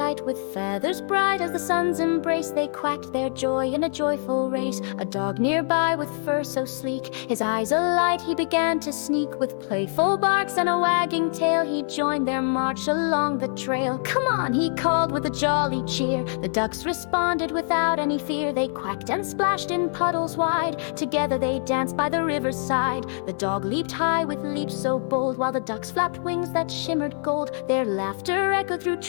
With feathers bright as the sun's embrace, they quacked their joy in a joyful race. A dog nearby with fur so sleek, his eyes alight, he began to sneak. With playful barks and a wagging tail, he joined their march along the trail. "Come on," he called with a jolly cheer. The ducks responded without any fear. They quacked and splashed in puddles wide. Together they danced by the river's side. The dog leaped high with leaps so bold, while the ducks flapped wings that shimmered gold. Their laughter echoed through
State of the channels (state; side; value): silent; right; 58 dB below the other